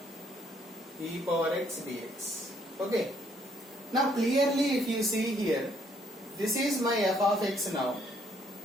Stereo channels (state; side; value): normal; both; correlation 0.67